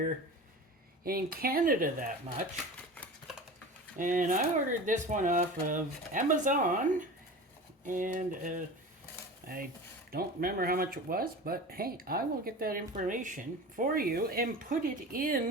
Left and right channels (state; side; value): normal; both; correlation 0.34